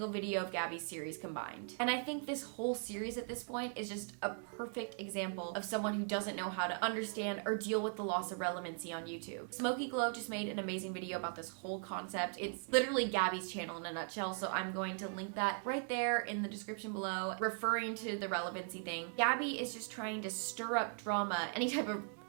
video of Gabbie's series combined. And I think this whole series at this point is just a perfect example of someone who doesn't know how to understand or deal with the loss of relevancy on YouTube. Smokey Glow just made an amazing video about this whole concept. It's literally Gabbie's channel in a nutshell, so I'm going to link that right there in the description below, referring to the relevancy thing. Gabbie is just trying to stir up drama, any type of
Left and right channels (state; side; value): silent; left; 52 dB below the other